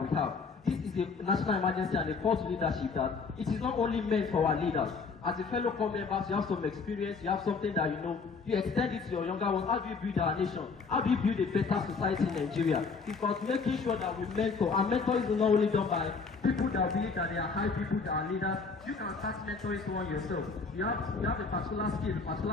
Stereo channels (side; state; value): right; quieter; 4.7 dB